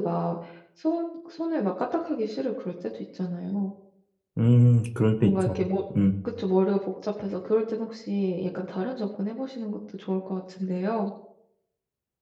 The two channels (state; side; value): identical; both; correlation 1.00